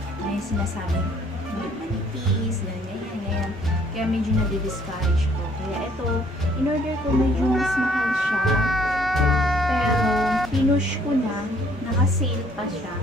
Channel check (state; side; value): normal; both; correlation 0.62